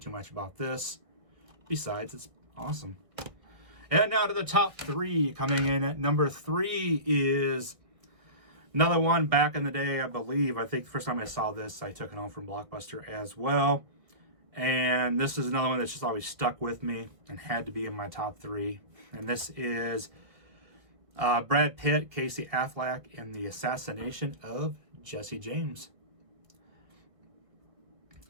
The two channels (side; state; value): left; late; 1.3 ms